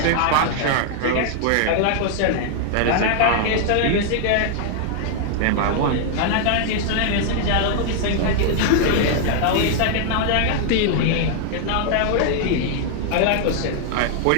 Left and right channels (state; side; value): different; both; correlation 0.00